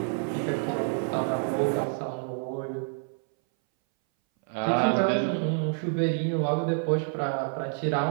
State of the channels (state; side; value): silent; left; 59 dB below the other